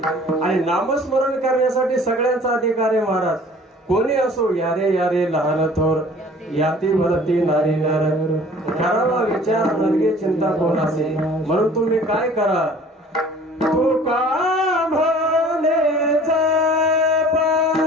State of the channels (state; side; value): normal; both; correlation 0.49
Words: आणि नामस्मरण करण्यासाठी सगळ्यांचा अधिकार आहे महाराज. कोणी असो यारे यारे लहान थोर याती भरती नारी नर. करावा विचार नरगे चिंता कोण असे. म्हणून तुम्ही काय करा तुका म्हणे जपा.